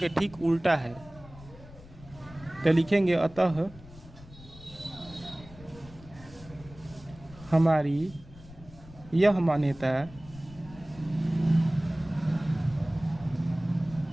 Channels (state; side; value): noise; left; rumble, 19 dB below the sound